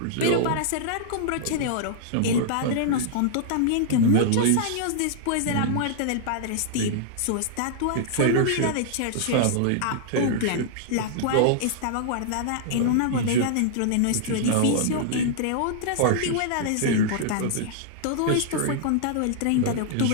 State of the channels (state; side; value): different; both; correlation -0.01